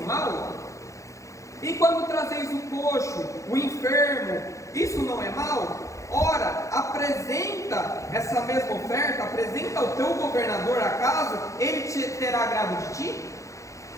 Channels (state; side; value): late; right; 0.15 ms